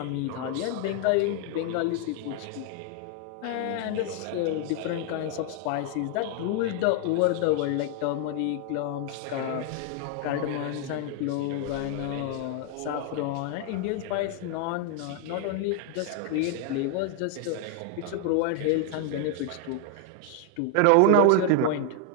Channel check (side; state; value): both; different; correlation 0.00